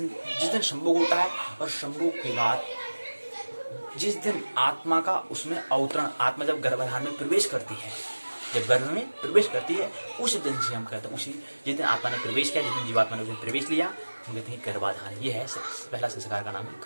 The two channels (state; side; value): inverted; both; correlation -1.00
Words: संभोग होता है, और संभोग के बाद जिस दिन आत्मा का उसमें अवतरण, आत्मा जब गर्भाधान में प्रवेश करती है, जब गर्भ में प्रवेश करती है, उस दिन से हम कहते हैं, उसी जिस दिन आत्मा ने प्रवेश किया, जिस दिन जीवात्मा ने उसमें प्रवेश लिया, हम कहते हैं गर्भाधान। ये है पहला संस्कार का नाम है